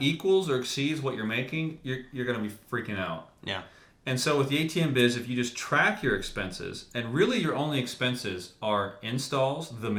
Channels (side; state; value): both; identical; correlation 1.00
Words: or exceeds what you're making, you're going to be freaking out. Yeah. And so with the ATM biz, if you just track your expenses, and really your only expenses are installs, the